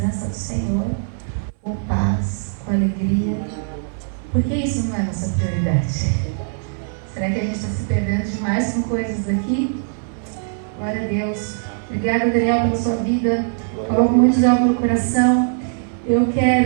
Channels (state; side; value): silent; left; 65 dB below the other